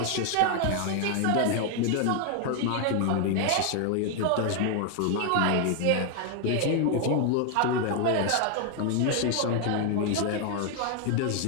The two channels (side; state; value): both; different; correlation 0.01